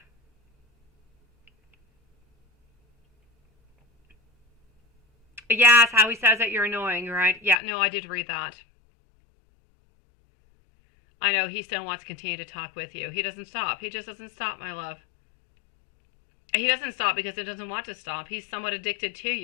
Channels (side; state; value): right; drops out; at 7.6 s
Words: Yes, how he says that you're annoying, right? Yeah, no, I did read that. I know, he still wants to continue to talk with you. He doesn't stop. He just doesn't stop, my love. He doesn't stop because he doesn't want to stop. He's somewhat addicted to